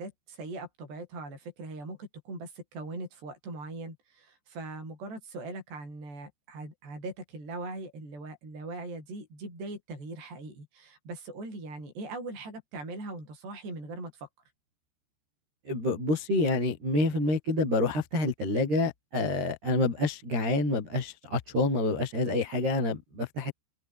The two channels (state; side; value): late; left; 14 ms